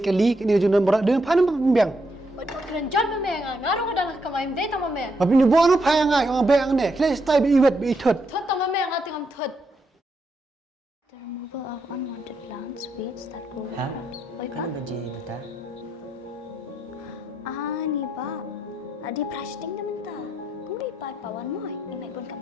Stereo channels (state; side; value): normal; both; correlation 0.80